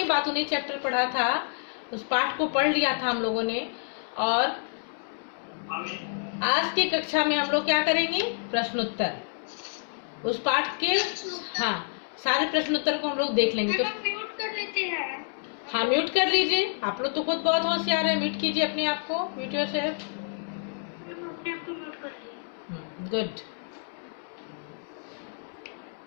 बातूनी चैप्टर पढ़ा था, उस पाठ को पढ़ लिया था हम लोगों ने। और आज की कक्षा में हम लोग क्या करेंगे? प्रश्नोत्तर। उस पाठ के हाँ सारे प्रश्नोत्तर को हम लोग देख लेंगे। तो म्यूट कर लेते हैं। हाँ, म्यूट कर लीजिए। आप लोग तो खुद बहुत होशियार है, म्यूट कीजिए अपने आप को। Mute yourself. Good.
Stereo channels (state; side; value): silent; right; digital silence